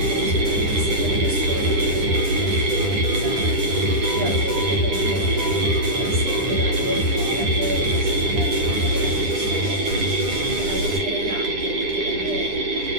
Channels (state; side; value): late; left; 9.9 ms